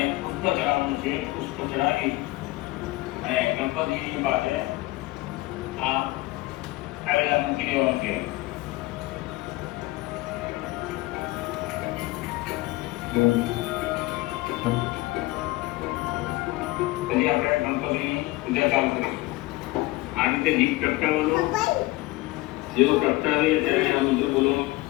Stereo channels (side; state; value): right; quieter; 20.1 dB